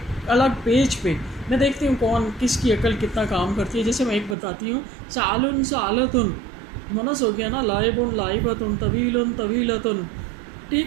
الگ پیج پہ میں دیکھتی ہوں کون کس کی عقل کتنا کام کرتی ہے. جیسے میں ایک بتاتی ہوں, سعال سعالتن مؤنث ہو گیا نا, لائب لائبتن طویل طویلتن, ٹھیک.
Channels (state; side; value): drops out; left; at 4.4 s